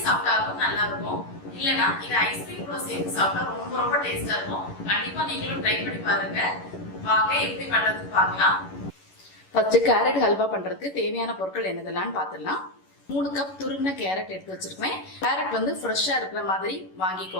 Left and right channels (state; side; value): late; right; 11 ms